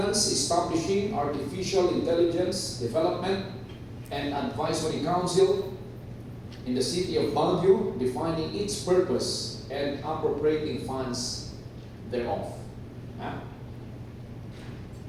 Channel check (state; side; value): identical; both; correlation 1.00